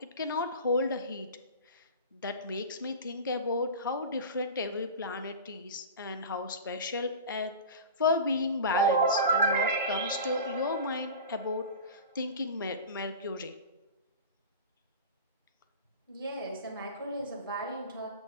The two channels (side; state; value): both; inverted; correlation -0.32